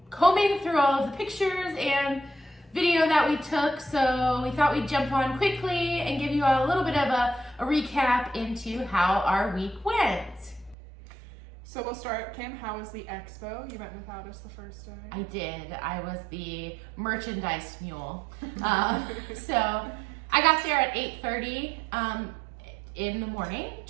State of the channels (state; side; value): drops out; left; at 10.8 s